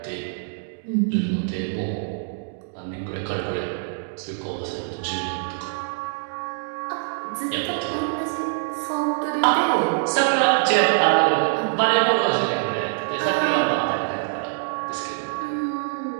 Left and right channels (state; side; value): silent; left; digital silence